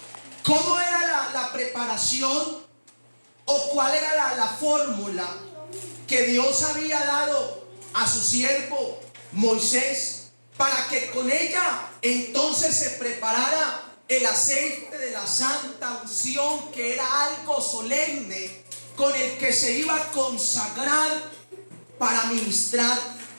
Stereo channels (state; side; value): inverted; both; correlation -1.00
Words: cómo era la preparación o cuál era la fórmula que Dios había dado a su siervo Moisés, para que con ella entonces se preparara el aceite de la santa unción, que era algo solemne con el que se iba a consagrar para ministrar